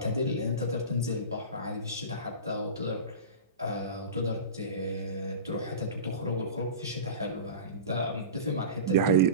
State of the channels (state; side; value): inverted; both; correlation -0.31